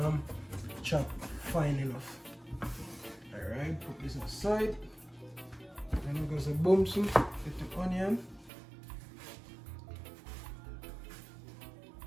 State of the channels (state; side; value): drops out; left; at 8.5 s